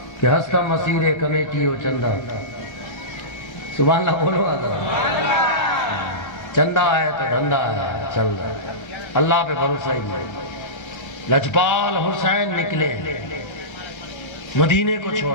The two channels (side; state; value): right; late; 1.3 ms